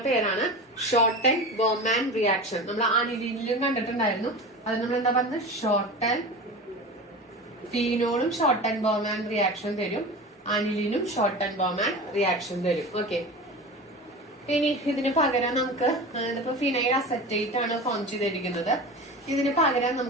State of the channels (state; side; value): normal; both; correlation 0.31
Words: പേരാണ് ഷോർട്ടൻ ബോമാൻ റിയാക്ഷൻ. നമ്മൾ അനിലിനിലും കണ്ടിട്ടുണ്ടായിരുന്നു. അത് നമ്മൾ എന്താ പറഞ്ഞത്? ഷോർട്ടൻ ഫീനോളും ഷോർട്ടൻ ബോമാൻ റിയാക്ഷൻ തരും, അനിലിനും ഷോർട്ടൻ ബോമാൻ റിയാക്ഷൻ തരും. ഓക്കെ, ഇനി ഇതിന് പകരം നമുക്ക് ഇതിപ്പോ ഫിനൈൽ അസറ്റേറ്റ് ആണ് ഫോം ചെയ്തിരിക്കുന്നത്. ഇതിന് പകരം